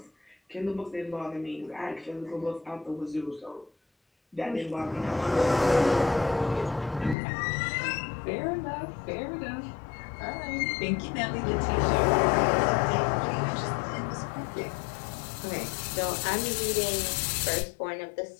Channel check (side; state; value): right; drops out; at 7.2 s